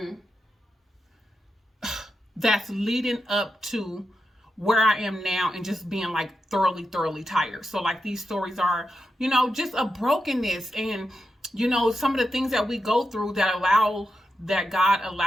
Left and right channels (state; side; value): normal; both; correlation 0.88